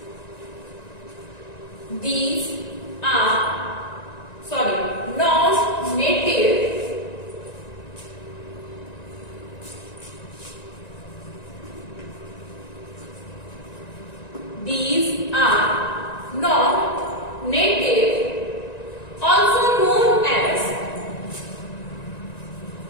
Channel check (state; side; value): late; right; 1.9 ms